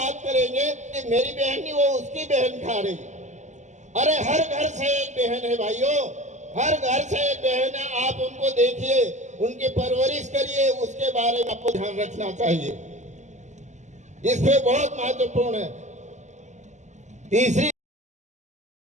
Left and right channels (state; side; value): late; left; 0.34 ms